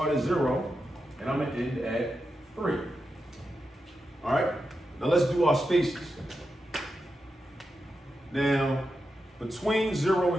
at 0 and I'm gonna end at 3. All right? Now let's do our spaces. Now, between 0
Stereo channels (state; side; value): normal; both; correlation 0.88